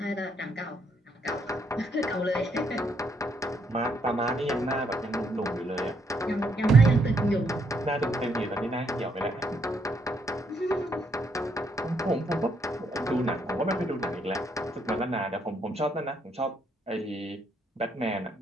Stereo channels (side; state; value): both; normal; correlation 0.73